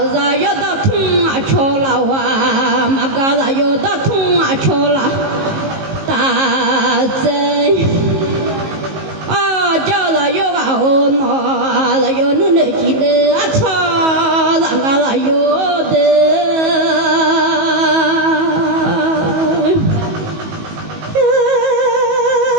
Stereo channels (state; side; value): late; left; 19 ms